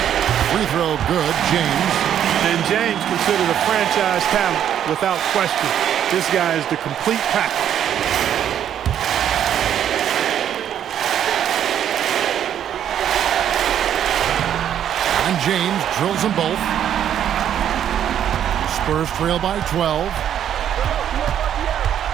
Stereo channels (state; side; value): quieter; left; 9.9 dB